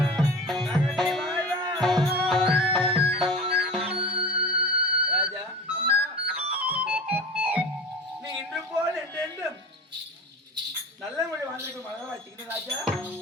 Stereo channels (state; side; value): normal; both; correlation 0.34